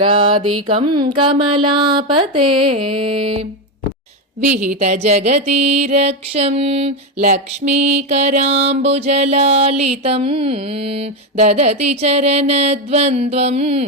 कमलापते विहित जगतीरक्षं लक्ष्मीकराम्बुजलालितं ददति चरणद्वन्द्वं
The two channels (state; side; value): normal; both; correlation 0.10